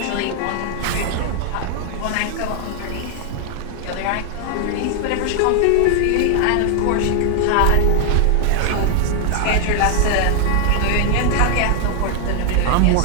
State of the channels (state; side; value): different; both; correlation 0.00